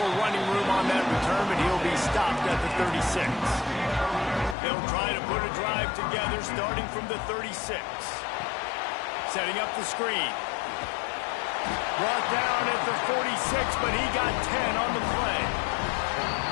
running room on that return, but he'll be stopped at the 36. They'll try to put a drive together starting from the 36. Setting up the screen. Brought down at the 46, but he got 10 on the play.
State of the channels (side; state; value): right; drops out; at 4.5 s